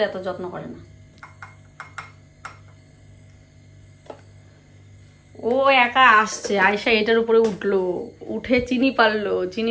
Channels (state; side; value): identical; both; correlation 1.00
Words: এত যত্ন করে না। ও একা আসছে, আয়সা এটার উপরে উঠলো, উঠে চিনি পারলো।